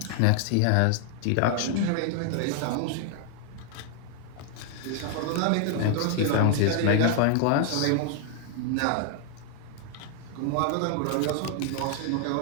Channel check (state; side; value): different; both; correlation 0.00